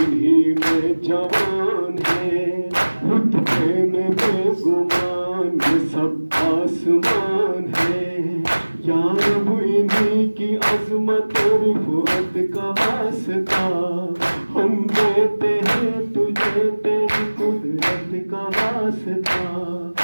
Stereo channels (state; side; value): inverted; both; correlation -1.00